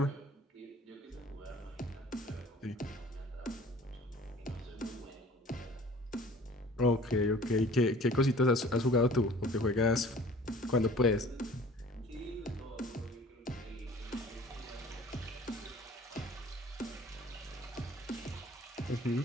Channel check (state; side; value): normal; both; correlation 0.48